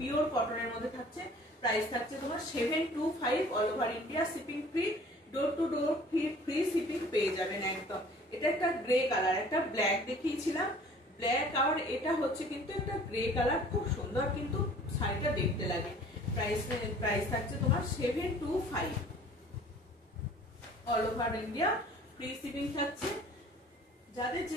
কটনের মধ্যে থাকছে। প্রাইস থাকছে তোমার 725, all over India shipping free, door to door free shipping পেয়ে যাবেন একদম। এটা একটা গ্রে কালার, একটা ব্ল্যাক দেখিয়েছিলাম, ব্ল্যাক আর এটা হচ্ছে কিন্তু একটা গ্রে কালার, খুব সুন্দর কিন্তু শাড়িটা দেখতে লাগে। প্রাইস থাকছে তোমার 725, all over India free shipping থাকছে। যাদের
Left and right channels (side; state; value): both; normal; correlation 0.50